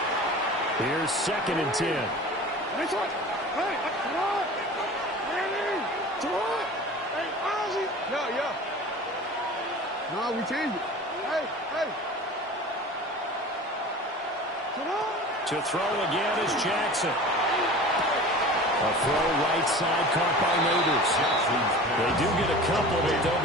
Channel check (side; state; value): both; normal; correlation 0.38